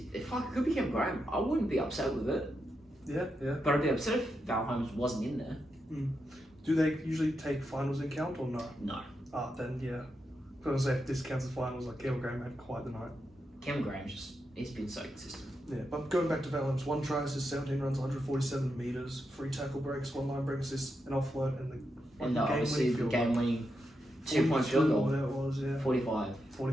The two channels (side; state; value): both; normal; correlation 0.85